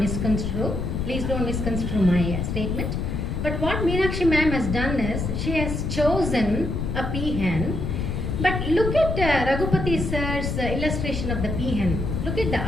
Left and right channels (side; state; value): left; noise; rumble, 2 dB below the sound